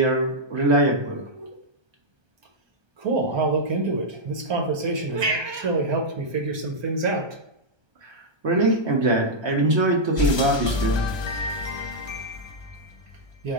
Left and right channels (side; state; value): left; late; 1.3 ms